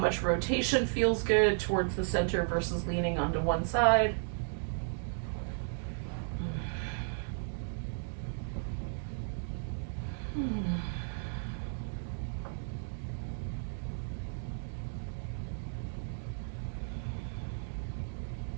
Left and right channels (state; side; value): silent; left; digital silence